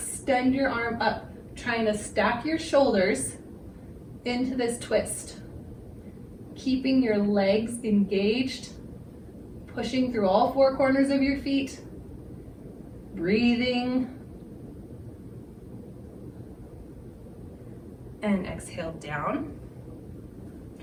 your arm up, trying to stack your shoulders into this twist. Keeping your legs engaged, pushing through all four corners of your feet, breathing, and exhale down.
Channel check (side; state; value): both; identical; correlation 1.00